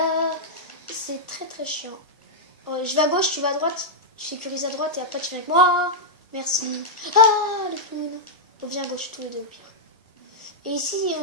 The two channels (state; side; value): normal; both; correlation -0.06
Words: C'est très chiant. Oh, je vais à gauche, tu vas à droite. Tu sécurises à droite et après tu viens avec moi. Merci. Ah, le clown. On vient à gauche, tous les deux au pire. Et ici,